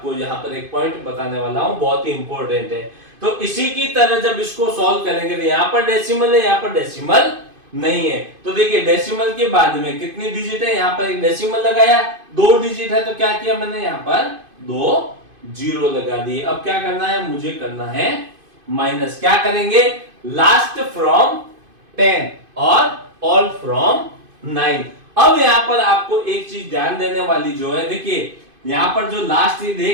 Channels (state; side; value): late; left; 2.5 ms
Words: यहाँ पर एक पॉइंट बताने वाला हूं, बहुत ही इंपॉर्टेंट है। तो इसी की तरह जब इसको सॉल्व करेंगे तो यहाँ पर डेसिमल है, यहाँ पर डेसिमल नहीं है। तो देखिए डेसिमल के बाद में कितनी डिजिट है, यहाँ पर एक डेसिमल लगाया, 2 डिजिट है, तो क्या किया मैंने यहाँ पर 2 जीरो लगा दिए। अब क्या करना है, मुझे करना है माइनस। क्या करेंगे, लास्ट फ्रॉम 10 और ऑल फ्रॉम 9। अब यहां पर आपको एक चीज ध्यान देने वाली जो है, देखिए यहां पर जो लास्ट ये